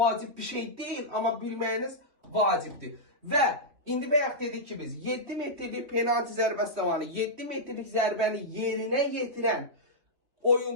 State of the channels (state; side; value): late; left; 3.4 ms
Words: bir şey deyil, amma bilməyiniz vacibdir. Və indi bayaq dedik ki biz 7 metrlik penaltı zərbəsi zamanı 7 metrlik zərbəni yerinə yetirən